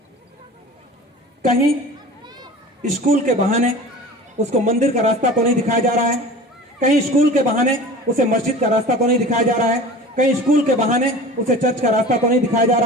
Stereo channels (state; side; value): normal; both; correlation 0.38